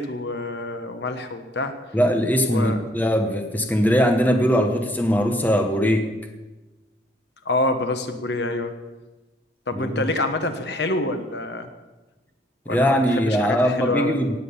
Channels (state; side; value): normal; both; correlation 0.63